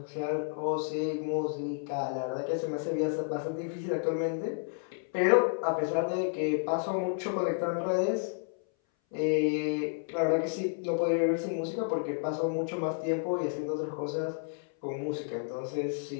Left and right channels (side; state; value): right; silent; 57 dB below the other